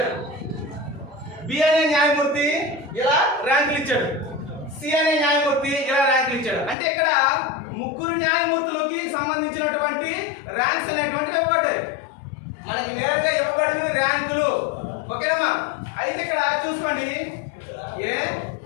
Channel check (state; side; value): drops out; right; at 6.8 s